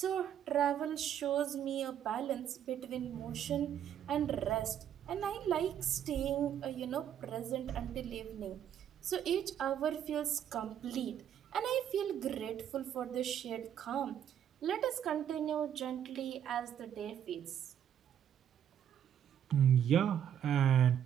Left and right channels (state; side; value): quieter; left; 9.6 dB